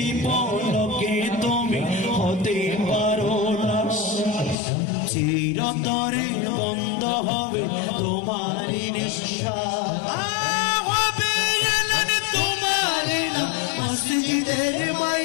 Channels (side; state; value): right; drops out; at 4.5 s